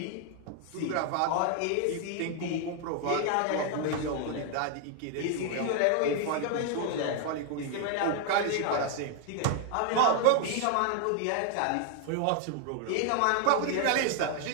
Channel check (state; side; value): different; both; correlation 0.00